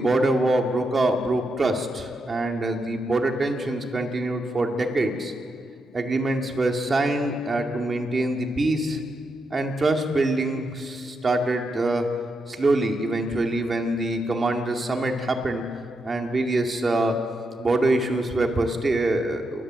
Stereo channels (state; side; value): normal; both; correlation 0.83